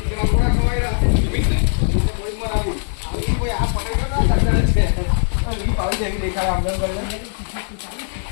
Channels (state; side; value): silent; right; digital silence